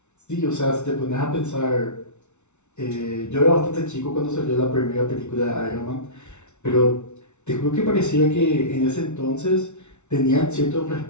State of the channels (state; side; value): late; right; 0.82 ms